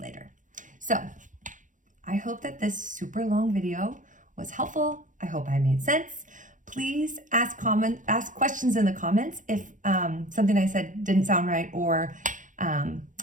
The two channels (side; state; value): left; late; 0.37 ms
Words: later. So I hope that this super long video was helpful. I hope I made sense. Please ask questions in the comments if something I said didn't sound right or